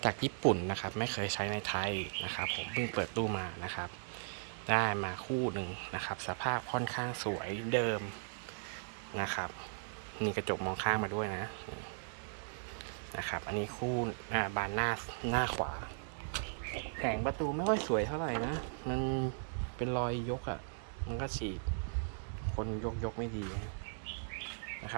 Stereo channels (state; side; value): silent; left; digital silence